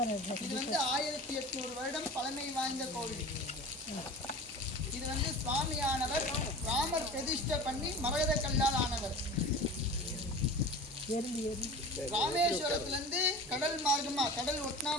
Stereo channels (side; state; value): both; normal; correlation 0.36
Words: இது வந்து 1800 வருடம் பழமை வாய்ந்த கோவில். இது வந்து சுவாமியானவர் ராமர் பிரதிஷ்டை பண்ணி மரகத கல்லால் ஆனவர். ராமேஸ்வரத்துல இருந்து கடல் மார்க்கமா கடல் ஒட்டினா